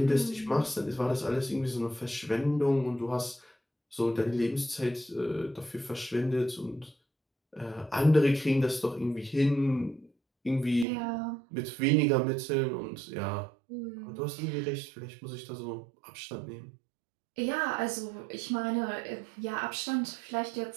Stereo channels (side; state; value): left; drops out; at 10.9 s